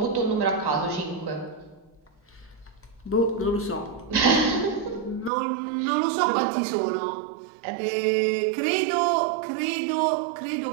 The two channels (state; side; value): drops out; left; at 5.3 s